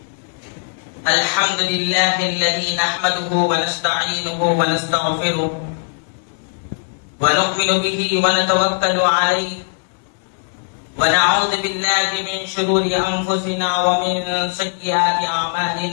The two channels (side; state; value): right; silent; 64 dB below the other